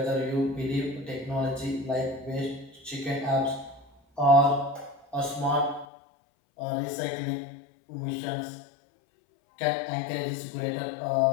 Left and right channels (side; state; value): right; drops out; at 5.9 s